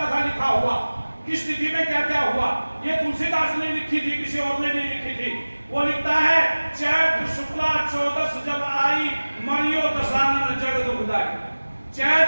था लिखा हुआ, किस तिथि में क्या क्या हुआ। ये तुलसीदास ने लिखी थी, किसी और ने नहीं लिखी थी। वो लिखता है चैत्र शुक्ला मरियो दशानन जग दुखदाई।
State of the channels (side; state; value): both; inverted; correlation -1.00